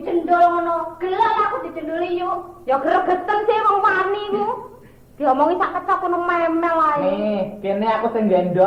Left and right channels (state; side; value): identical; both; correlation 1.00